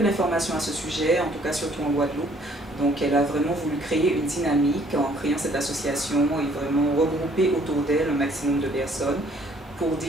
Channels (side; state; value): both; normal; correlation 0.61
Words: d'informations à ce sujet, en tout cas surtout en Guadeloupe, donc elle a vraiment voulu créer une dynamique en créant cette association et vraiment regrouper autour d'elle un maximum de personnes pour